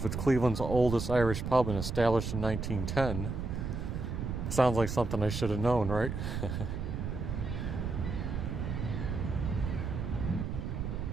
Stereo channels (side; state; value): right; noise; rumble, 3 dB below the sound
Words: it's Cleveland's oldest Irish pub and established in 1910, sounds like something I should have known, right?